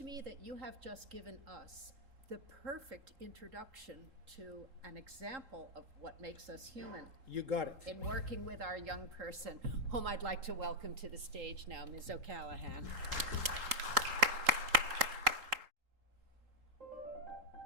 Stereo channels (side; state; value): left; late; 3.8 ms